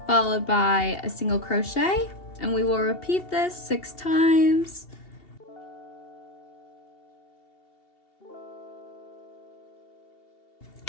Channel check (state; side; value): late; right; 2.7 ms